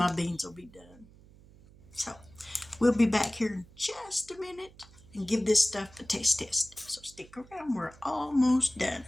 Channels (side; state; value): right; noise; hum, 24 dB below the sound